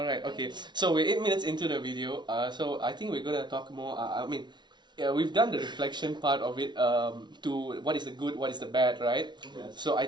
okay. So we're 8 minutes into the video. So I think we're gonna talk more. We've done the reflection part of it to what is the good, what is the bad, right? Yes. So I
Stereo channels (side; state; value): left; late; 0.21 ms